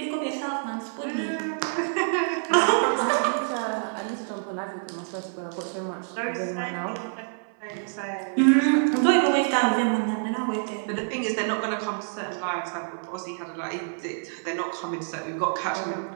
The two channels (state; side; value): silent; left; 56 dB below the other